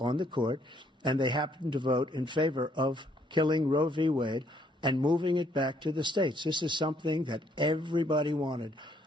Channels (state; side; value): normal; both; correlation 0.67